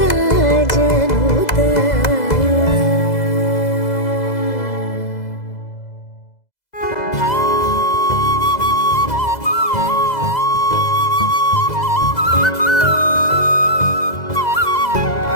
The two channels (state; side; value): late; right; 2.0 ms